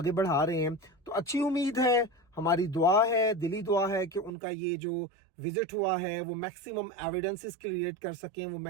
بڑھا رہے ہیں. تو اچھی امید ہے، ہماری دعا ہے، دلی دعا ہے کہ ان کا یہ جو وزٹ ہوا ہے وہ میکسیمم ایویڈنسز کریٹ کر سکیں، وہ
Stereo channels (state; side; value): drops out; left; at 4.3 s